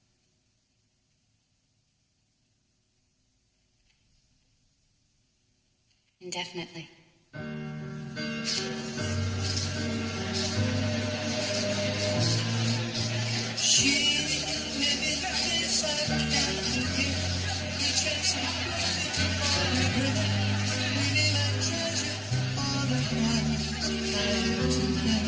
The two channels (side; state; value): both; identical; correlation 1.00